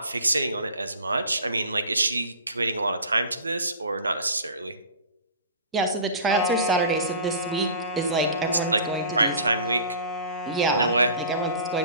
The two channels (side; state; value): both; inverted; correlation -0.40